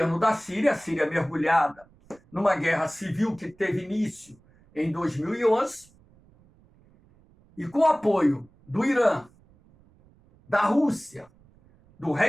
da Síria, a Síria mergulhada numa guerra civil que teve início em 2011, e com apoio do Irã, da Rússia, do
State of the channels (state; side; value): noise; right; rumble, 30 dB below the sound